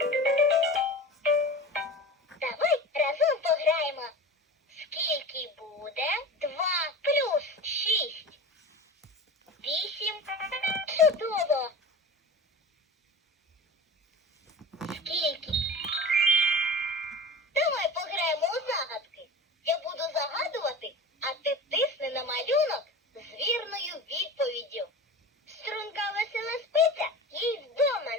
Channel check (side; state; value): both; normal; correlation 0.33